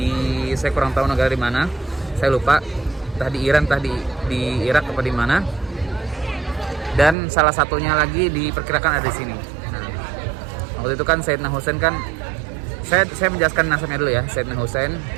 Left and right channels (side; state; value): left; drops out; at 7.2 s